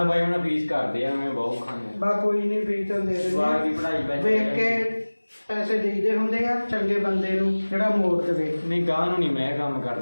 ਬਾਈ, ਹੁਣ ਫੀਸ ਕਰਦੇ ਆ, ਮੈਂ ਬਹੁਤ ਖਾਂਦੇ ਬਾ ਕੋਈ ਨਹੀਂ, ਫੀਸ ਤਾਂ ਦੇ ਜਵਾਬ ਦੀ ਦਿੰਦੇ ਪੜ੍ਹਾਈ ਵੇਖ ਕੇ ਪੈਸੇ ਦੇਈਦੇ ਹੁੰਦੇ ਆ ਚੰਗੇ ਬੰਦੇ ਨੂੰ ਜਿਹੜਾ ਮੋੜ ਦੇਵੇ। ਨਹੀਂ ਗਾਂ ਨੂੰ ਨਹੀਂ ਮੈਂ ਕੰਮ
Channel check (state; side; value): inverted; both; correlation -1.00